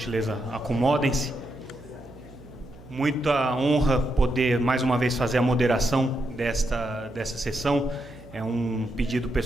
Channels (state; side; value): noise; right; hum, 21 dB below the sound